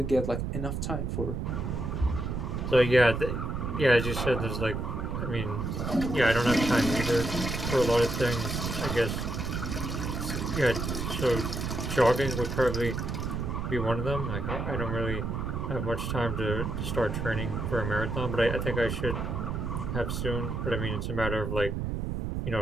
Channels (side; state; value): right; noise; rumble, 3 dB below the sound